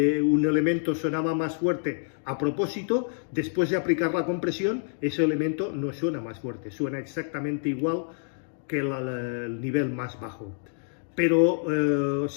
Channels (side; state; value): right; silent; digital silence